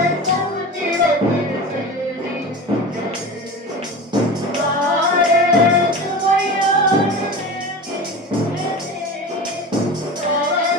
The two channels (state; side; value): normal; both; correlation 0.31